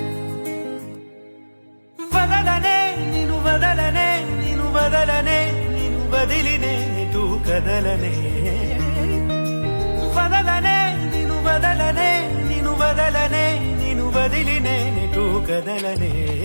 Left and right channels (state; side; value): inverted; both; correlation -1.00